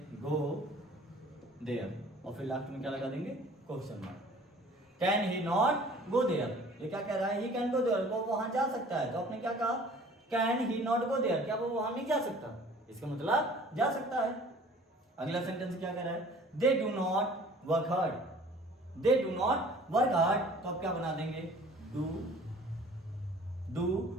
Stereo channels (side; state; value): both; normal; correlation 0.50